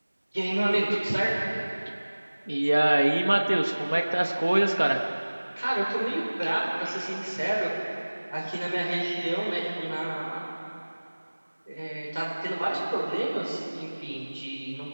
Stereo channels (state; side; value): inverted; both; correlation -1.00